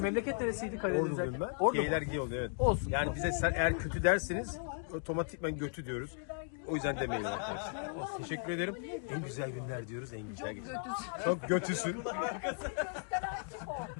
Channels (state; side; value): silent; right; 54 dB below the other